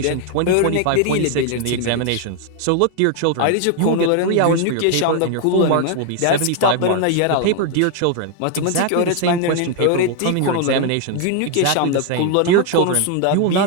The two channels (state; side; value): different; both; correlation 0.00